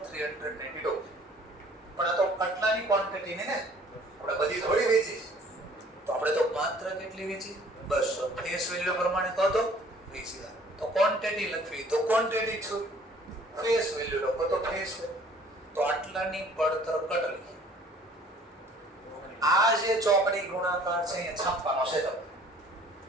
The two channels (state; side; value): normal; both; correlation 0.54